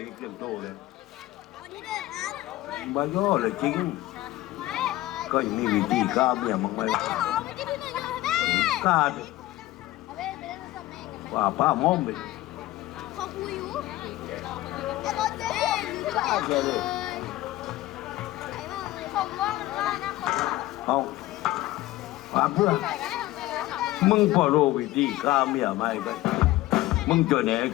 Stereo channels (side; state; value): right; quieter; 16.8 dB